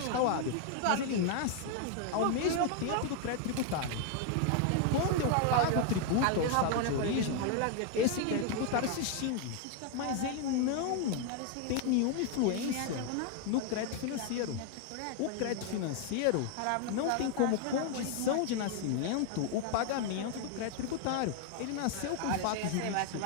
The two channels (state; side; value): different; both; correlation 0.00